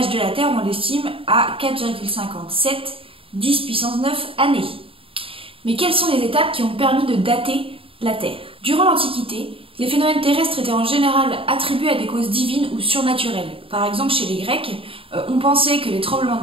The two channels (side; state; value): left; late; 0.27 ms